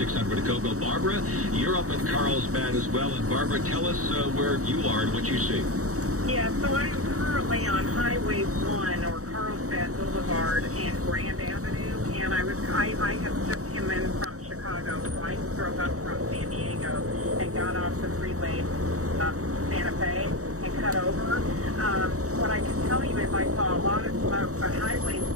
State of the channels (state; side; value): late; left; 0.65 ms